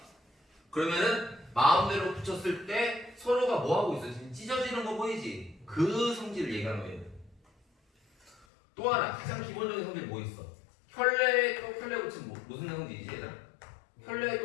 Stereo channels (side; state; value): right; drops out; at 8.5 s